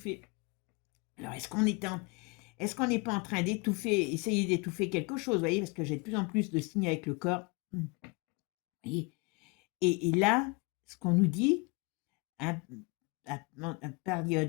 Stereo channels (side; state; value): right; quieter; 29.0 dB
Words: Alors, est-ce qu'on n'est pas en train d'étouffer, essayer d'étouffer quelque chose, vous voyez, parce que j'ai de plus en plus de signes avec le corps. Et, et là, ce qu'on nous dit, à